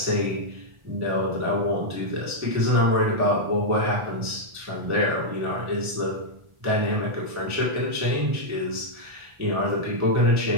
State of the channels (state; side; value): late; left; 1.4 ms